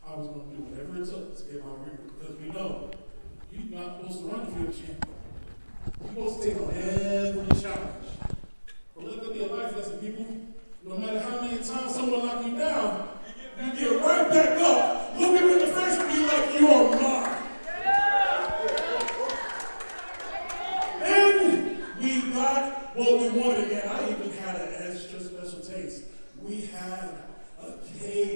I was going to do whatever it took to get my ring, because we know you're not supposed to run if you're a champion. You're supposed to take on every challenge. But let there be a life lesson, people. No matter how many times someone knock you down, you get right back up, look him in the face and be like, you are mine. And we got what we wanted, and I even had an extra special taste. We had a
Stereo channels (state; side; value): inverted; both; correlation -1.00